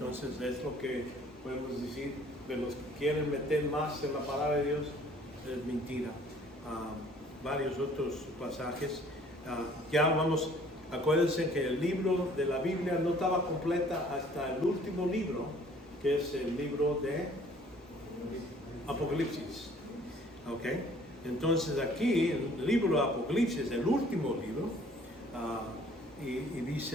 es lo que podemos decir de los que quieren meter más en la palabra de Dios, es mentira. Varios otros pasajes. Acuérdense que el libro de la Biblia no estaba completa hasta el último libro, que es el libro de Apocalipsis. ¿Ok? Entonces aquí, el libro de Apocalipsis, el último libro, y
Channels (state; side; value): normal; both; correlation 0.56